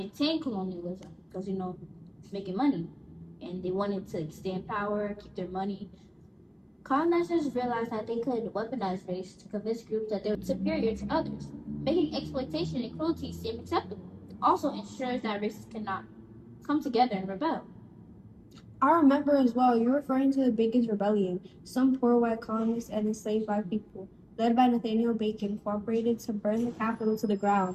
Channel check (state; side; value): identical; both; correlation 1.00